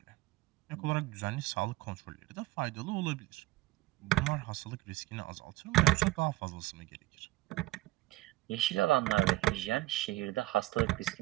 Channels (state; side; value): quieter; left; 18.3 dB